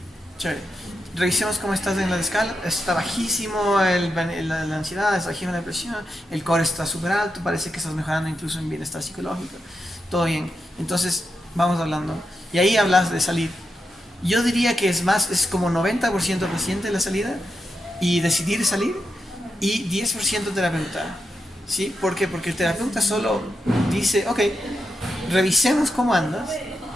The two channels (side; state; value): both; normal; correlation 0.85